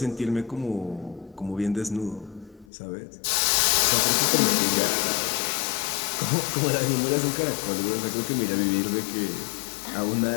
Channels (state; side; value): drops out; right; at 2.7 s